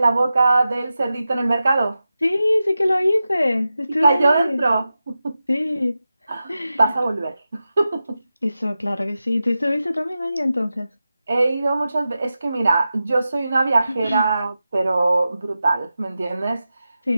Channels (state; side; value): inverted; both; correlation -0.92